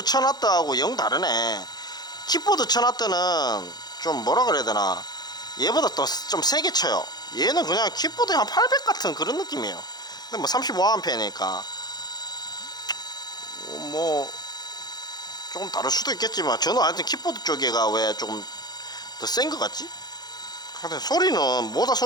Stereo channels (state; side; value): late; right; 0.20 ms